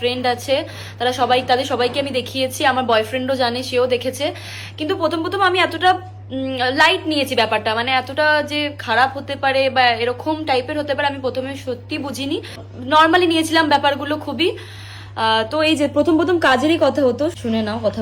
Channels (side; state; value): both; identical; correlation 1.00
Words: আছে তাদের সবাইকে আমি দেখিয়েছি, আমার বয়ফ্রেন্ডও জানে, সেও দেখেছে। কিন্তু প্রথম প্রথম আমি এতটা লাইট নিয়েছি ব্যাপারটা, মানে এতটা যে খারাপ হতে পারে বা এরকম টাইপের হতে পারে আমি প্রথমে সত্যি বুঝিনি, নর্মালি নিয়েছিলাম ব্যাপারগুলো খুবই। তো এই যে প্রথম প্রথম কাজেরই কথা হতো, শুনে নাও